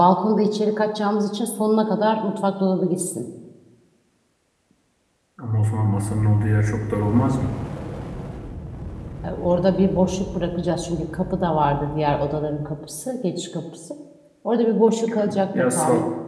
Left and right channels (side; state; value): both; identical; correlation 1.00